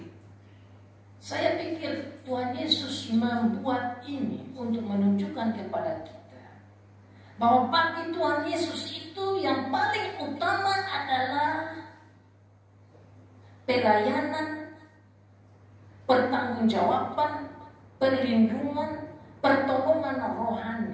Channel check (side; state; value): both; identical; correlation 1.00